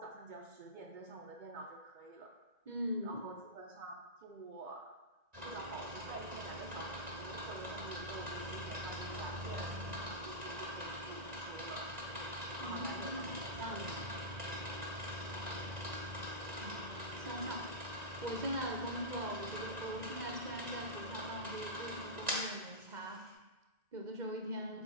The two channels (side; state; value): left; late; 1.9 ms